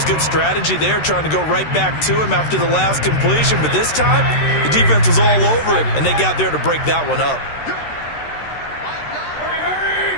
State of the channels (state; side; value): late; right; 13 ms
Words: good strategy there, trying to go right back to him after the last completion. But this time, the defense was all over him, and they got there to break that one up.